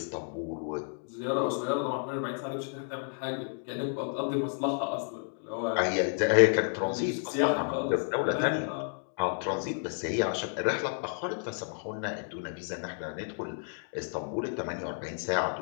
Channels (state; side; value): silent; right; 57 dB below the other